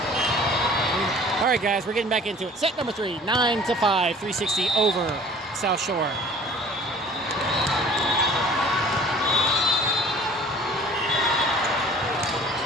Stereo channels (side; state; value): both; normal; correlation 0.49